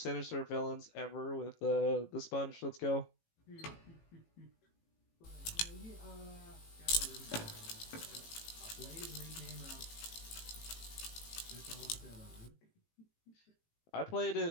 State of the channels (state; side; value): late; right; 18 ms